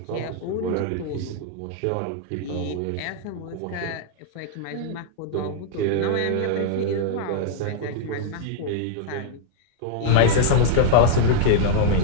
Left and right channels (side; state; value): both; different; correlation -0.01